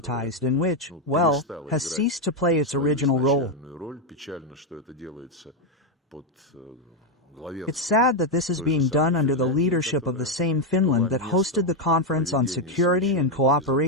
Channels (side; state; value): both; normal; correlation 0.04